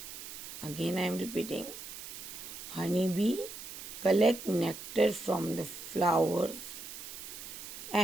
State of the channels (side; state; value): right; noise; hiss, 10 dB below the sound